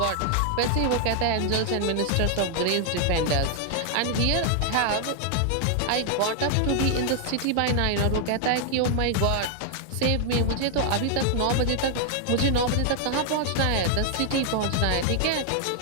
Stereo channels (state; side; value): different; both; correlation 0.00